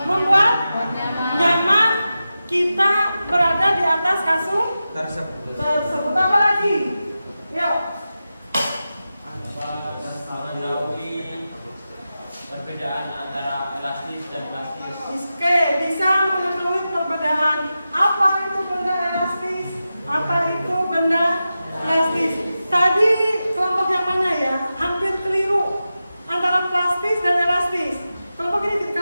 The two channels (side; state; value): both; inverted; correlation -0.92